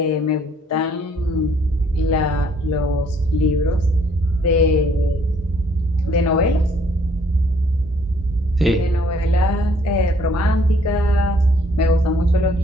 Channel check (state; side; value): normal; both; correlation 0.63